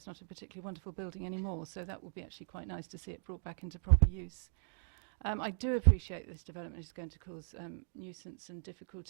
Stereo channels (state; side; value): silent; left; digital silence